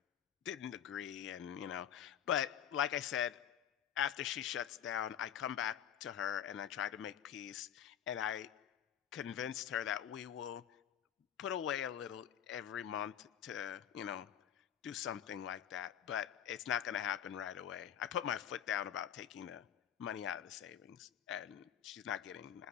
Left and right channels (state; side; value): quieter; right; 9.6 dB